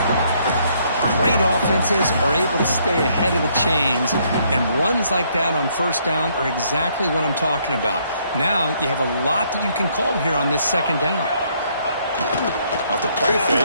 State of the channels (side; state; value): both; inverted; correlation -0.68